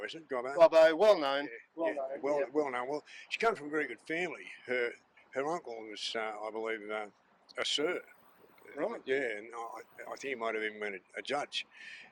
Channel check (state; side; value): identical; both; correlation 1.00